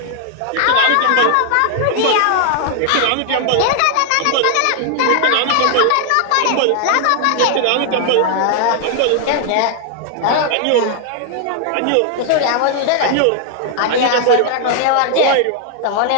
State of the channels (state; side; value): different; both; correlation 0.00